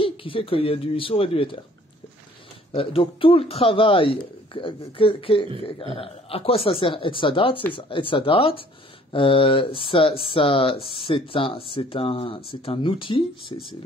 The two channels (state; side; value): normal; both; correlation 0.56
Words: qui fait qu'il y a du Issour et du Éther. Donc tout le travail, à quoi ça sert Etzadat? C'est ça. Etzadat, c'est un outil,